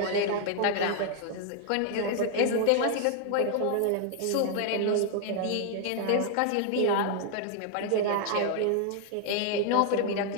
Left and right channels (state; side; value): different; both; correlation 0.00